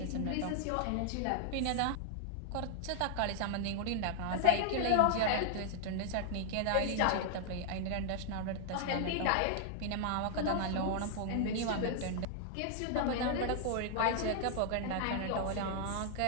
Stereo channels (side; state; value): both; different; correlation 0.00